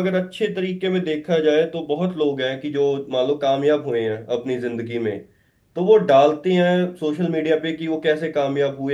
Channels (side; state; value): both; identical; correlation 1.00